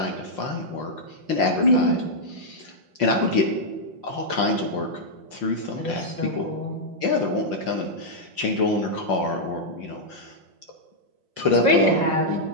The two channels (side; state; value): left; late; 5.7 ms